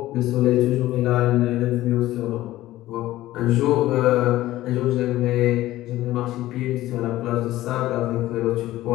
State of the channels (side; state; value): right; quieter; 15.7 dB